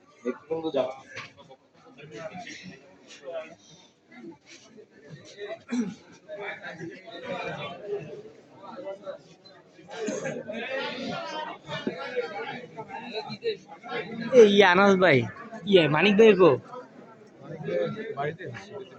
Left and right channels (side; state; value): both; identical; correlation 1.00